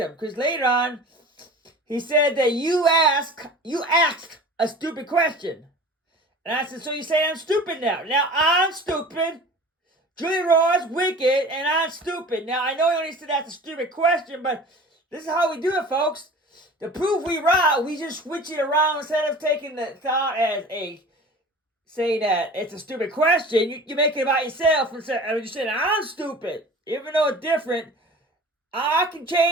Because later on, he said that you asked a stupid question. And I said, so you say I'm stupid now. Now, I'm stupid. Julie Roy's wicked, and I'm stupid. Now, I know you only said that's a stupid question, but this is how we do it, folks. To prove we right, we just switch it around instead of taking the thought as saying that it's a stupid question. You make it about yourself and you're saying I'm stupid. Even though it's different, I can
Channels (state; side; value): normal; both; correlation 0.40